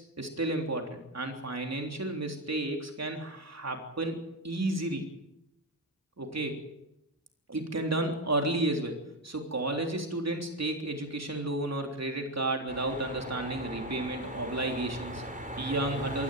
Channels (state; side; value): normal; both; correlation 0.11